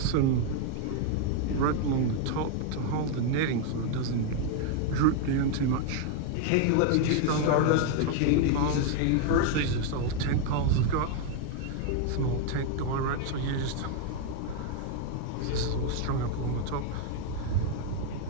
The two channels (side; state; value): both; different; correlation 0.01